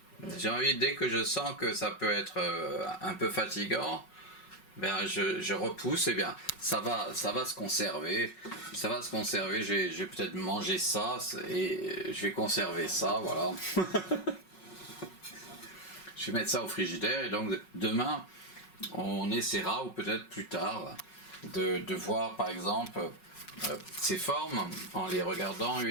j'ai envie, dès que je sens que ça peut être un peu fatigant, ben je repousse, et bien ça va se conserver. Ça va se conserver, je vais peut-être manger ça et je vais conserver ça, voilà. Je vais mettre ça au frigidaire et donc demain on essaiera, ou peut-être plus tard, de voir par exemple ces formes en les regardant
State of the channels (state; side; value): late; right; 5.4 ms